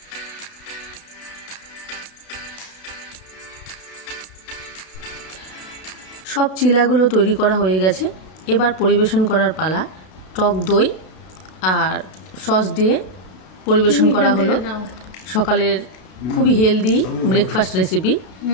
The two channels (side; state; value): right; late; 32 ms